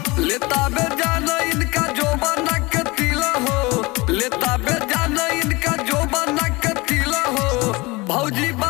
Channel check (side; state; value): right; quieter; 23.7 dB